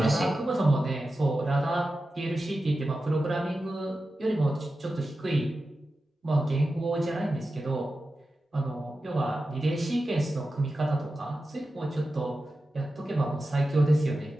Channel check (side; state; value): both; normal; correlation 0.92